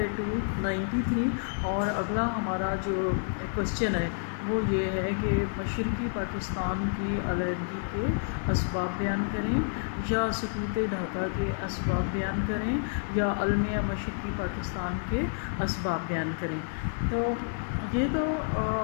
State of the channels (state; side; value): silent; right; 58 dB below the other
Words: 293 اور اگلا ہمارا جو کوشچن ہے وہ یہ ہے کہ مشرقی پاکستان کی علیحدگی کے اسباب بیان کریں یا سقوط ڈھاکہ کے اسباب بیان کریں یا المیہ مشرقی پاکستان کے اسباب بیان کریں۔ تو یہ تو